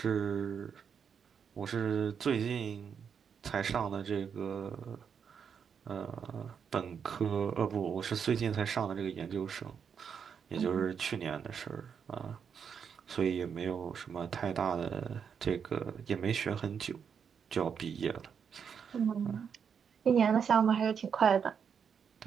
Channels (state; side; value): quieter; left; 7.0 dB